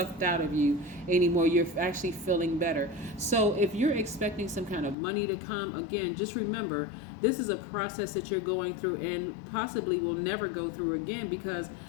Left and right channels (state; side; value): drops out; right; at 5.0 s